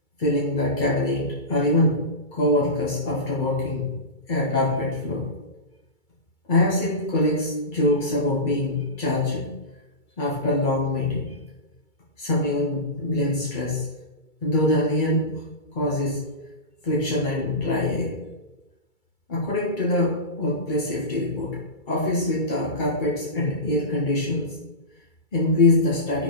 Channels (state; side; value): late; right; 2.3 ms